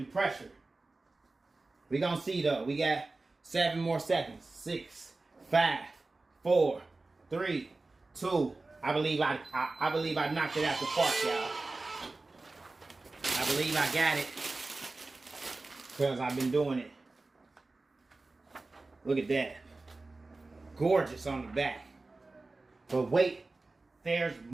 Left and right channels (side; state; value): left; quieter; 3.4 dB